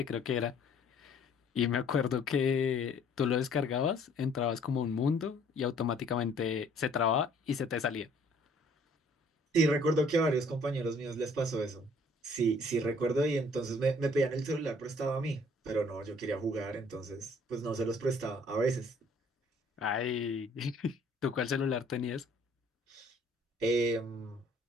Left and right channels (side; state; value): both; normal; correlation 0.58